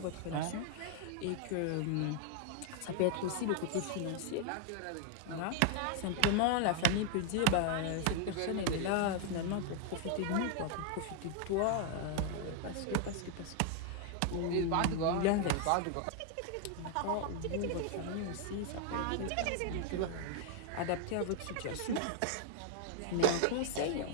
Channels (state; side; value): different; both; correlation 0.00